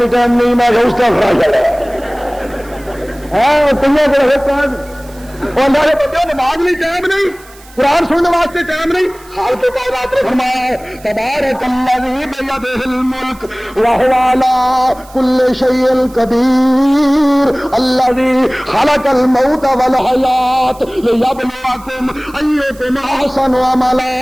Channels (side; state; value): right; noise; hiss, 24 dB below the sound